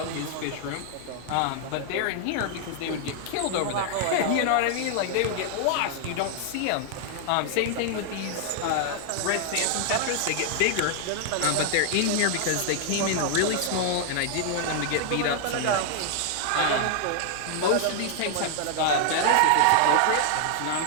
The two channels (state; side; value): different; both; correlation 0.00